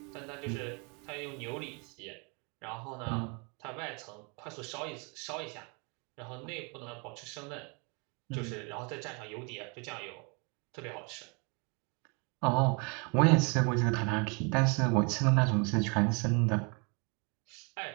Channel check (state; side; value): quieter; left; 32.9 dB